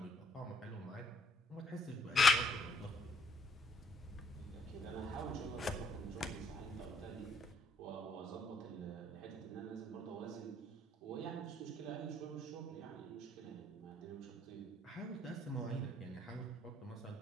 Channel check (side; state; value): both; normal; correlation 0.67